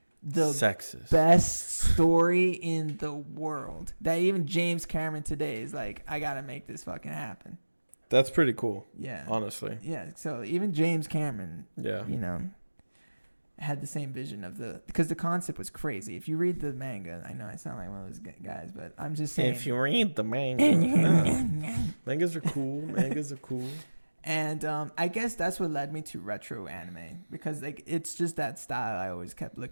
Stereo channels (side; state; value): both; inverted; correlation -1.00